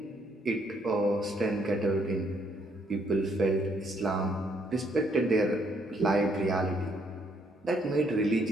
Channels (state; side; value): normal; both; correlation 0.70